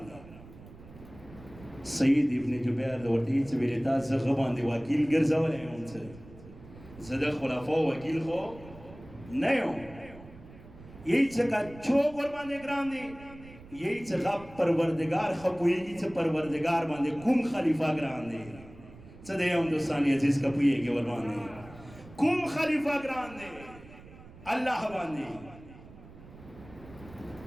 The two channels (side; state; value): right; noise; rumble, 19 dB below the sound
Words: دا سید ابن جبیر ورته چې ویلتا زغه باندې وکیل ګرځولې هم څه زده خلفاء وکیل خو نه یو یہی چکا چوک اور باندے گران دے یہی چکا پروردگار خپوئیگی چا پروردگار باندے کم خلیفہ گران دے چدے ہم دوستانی عزیز کپوئیگی اور باندے کم خلیفہ گران دے اللہ باندے